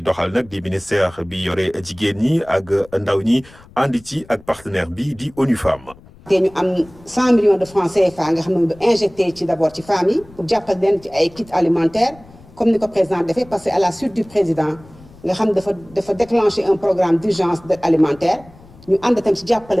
doxal nag di ministère bi yore jigéen ñi ak ndaw ñi ànd ci ak partenaire bi di ONU Femmes. te ñu am 100 millions de francs CFA nga xam ne injecté ci d'abord ci femmes yi pour jàppal leen ci ay kits alimentaires comme ni ko président defee parce que à la suite du président nga xam dafa déclencher un programme d'urgence d'aide alimentaire ñu ànd tam ci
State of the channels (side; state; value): left; noise; rumble, 24 dB below the sound